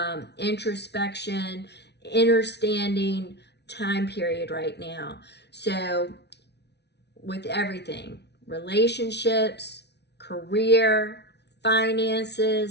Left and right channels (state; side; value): late; right; 0.50 ms